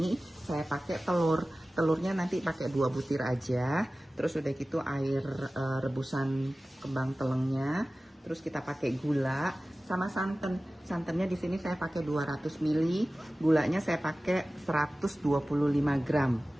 saya pakai telur. Telurnya nanti pakai 2 butir aja. Terus udah gitu air rebusan kembang telengnya. Terus kita pakai gula sama santan. Santannya di sini saya pakai 200 ml. Gulanya saya pakai 125 gram.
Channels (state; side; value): normal; both; correlation 0.97